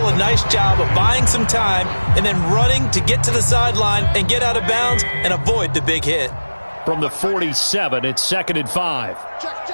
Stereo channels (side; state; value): both; inverted; correlation -1.00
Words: a nice job of buying some time and then running to get to the sideline and get out of bounds and avoid the big hit. From the 47, it's second and 5.